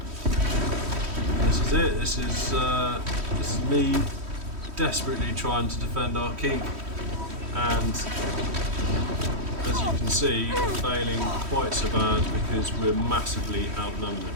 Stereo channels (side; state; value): left; late; 3.1 ms